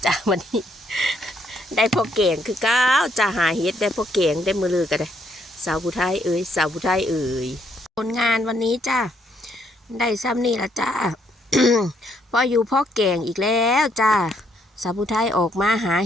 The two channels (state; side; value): normal; both; correlation 0.71